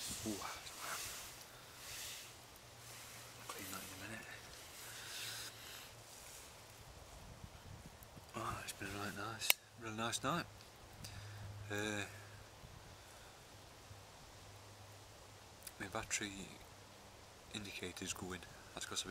Ooh, I'll clean that in a minute. Oh, it's been a really nice night. My battery indicator's going. That's because I've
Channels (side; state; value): both; identical; correlation 1.00